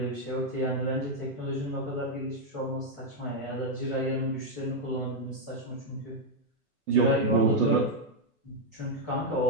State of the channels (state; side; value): normal; both; correlation 0.00